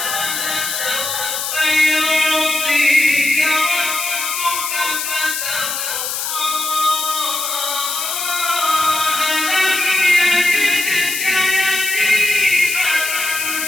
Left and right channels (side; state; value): left; noise; hiss, 3 dB below the sound